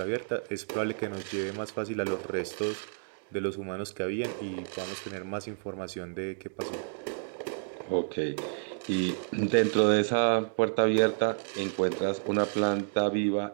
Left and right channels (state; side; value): silent; left; digital silence